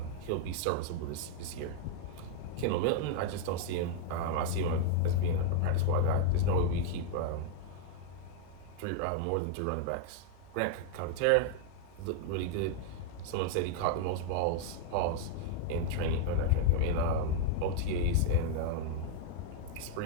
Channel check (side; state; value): both; different; correlation 0.00